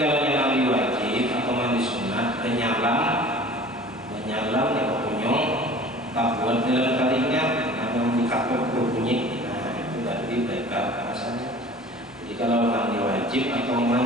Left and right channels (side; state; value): both; normal; correlation 0.44